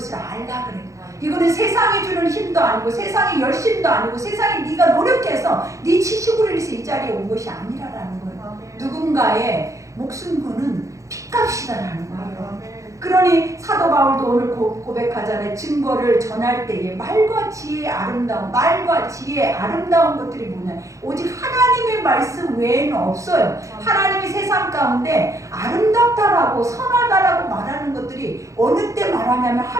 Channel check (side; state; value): left; late; 0.15 ms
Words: 알라 그래요. 이거는 세상이 주는 힘도 아니고 세상의 열심도 아니고 세상에 네가 노력해서 네 지식으로 인해서 이 자리에 온 것이 아니라라는 거예요. 누군가의 목숨 거는 핏값이다라는 거예요. 그러니 사도 바울도 오늘 고백하잖아요. 증거를 전할 때에 말과 지혜의 아름다움, 말과 지혜의 아름다운 것들이 뭐냐? 오직 하나님의 말씀 외에는 없어요. 하나님이 세상 가운데 아름답다라고 선하다라고 말하는 것들이 어느 때 말하냐면